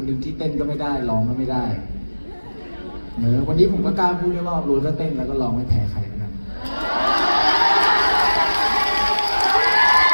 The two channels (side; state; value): both; inverted; correlation -1.00